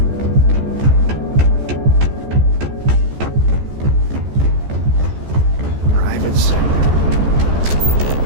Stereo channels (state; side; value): late; left; 14 ms